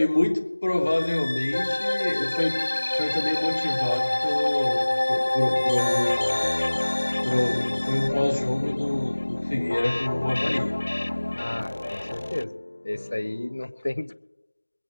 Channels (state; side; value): inverted; both; correlation -1.00